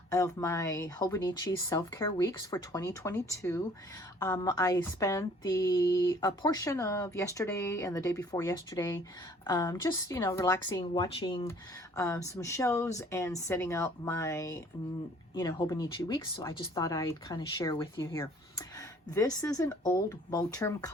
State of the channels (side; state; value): both; normal; correlation 0.55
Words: of my Hobonichi self-care weeks for 2022. I spent a portion of yesterday and the day before yesterday just relaxing, watching some shows and setting up my Hobonichi Weeks. So I just thought I'd kind of share with you here. This is an old Moterm